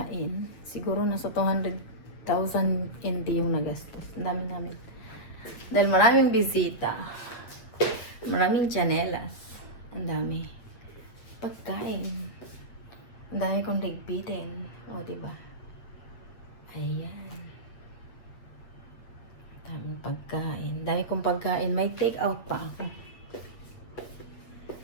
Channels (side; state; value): right; late; 8.3 ms